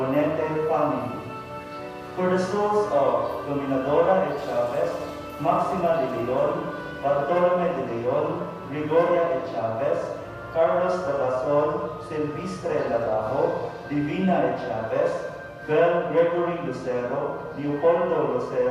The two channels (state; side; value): identical; both; correlation 1.00